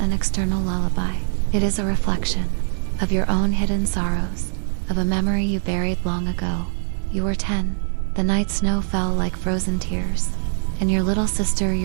an external lullaby. It is a reflection of your own hidden sorrows, of a memory you buried long ago. You were 10. The night snow fell like frozen tears, and your little sister,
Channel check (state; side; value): silent; left; digital silence